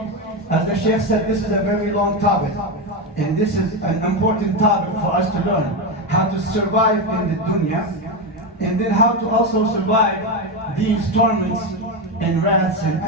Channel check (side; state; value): both; normal; correlation 0.12